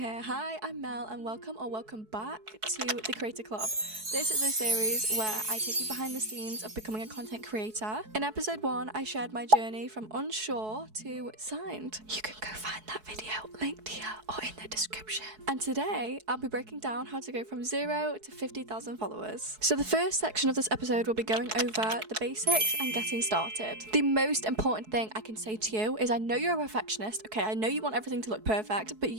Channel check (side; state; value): left; late; 4.7 ms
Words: hi, I'm Mel and welcome back to the Creator Club. This is a series where I take you behind the scenes of becoming a content creator. In episode 1, I shared my journey from unsure to signed. You can go find that video linked here or in the description. And today, I'll be breaking down how to go from 0 to 50,000 followers. So the first section of this episode will be going over the basics and getting started. The most important thing I can say to you is I know you're a perfectionist, okay, I know you want everything to look perfect, but